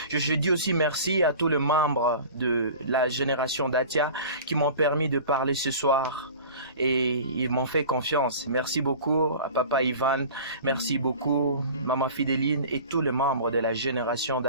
Je dis aussi merci à tous les membres de la génération d'Atia qui m'ont permis de parler ce soir et ils m'ont fait confiance. Merci beaucoup à Papa Ivan, merci beaucoup Maman Fidéline et tous les membres de la génération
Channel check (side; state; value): both; inverted; correlation -0.40